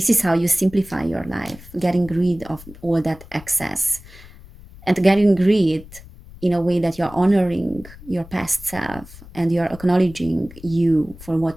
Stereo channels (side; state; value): left; noise; rumble, 19 dB below the sound